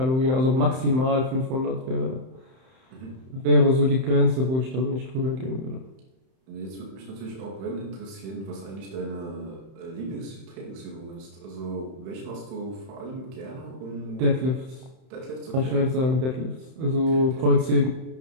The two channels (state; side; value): late; left; 31 ms